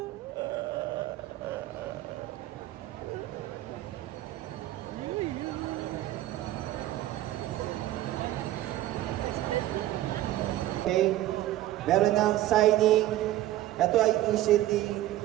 Okay, meron ng signing. Ito ay initiative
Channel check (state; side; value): quieter; left; 14.7 dB